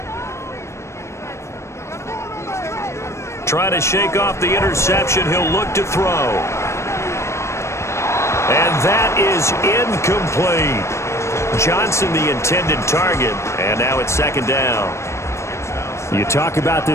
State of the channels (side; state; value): right; late; 0.13 ms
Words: Trying to shake off the interception. He'll look to throw. And that is incomplete. Johnson the intended target. And now it's 2nd down. You talk about